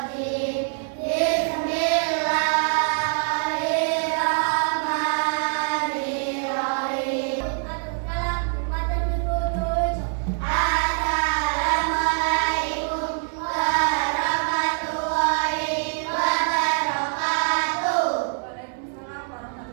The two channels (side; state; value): left; silent; 62 dB below the other